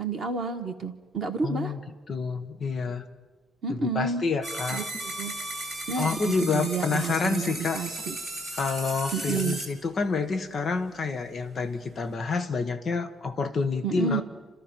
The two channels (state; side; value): normal; both; correlation 0.64